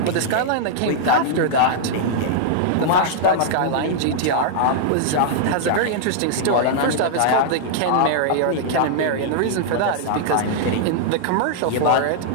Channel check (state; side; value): different; both; correlation -0.01